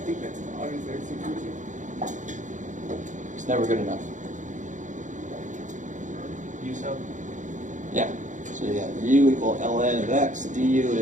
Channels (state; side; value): late; left; 0.36 ms